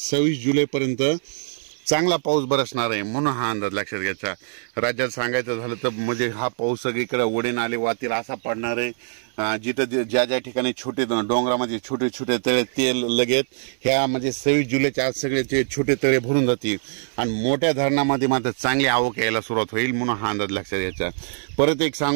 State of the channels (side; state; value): left; silent; 63 dB below the other